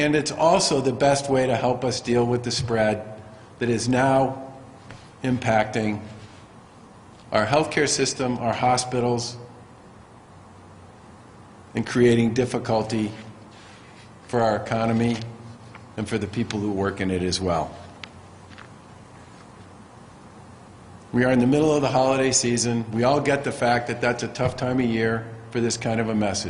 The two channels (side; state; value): both; identical; correlation 1.00